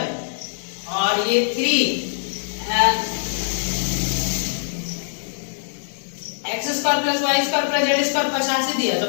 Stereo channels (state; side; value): silent; right; 60 dB below the other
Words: और ये 3 x square plus y square plus z square 85 दिया, तो